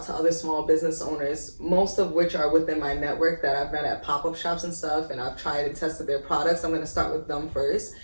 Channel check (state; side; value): inverted; both; correlation -1.00